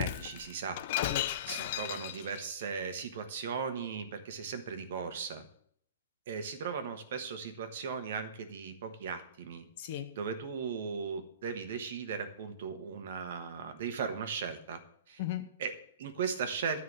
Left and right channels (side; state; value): both; inverted; correlation -0.40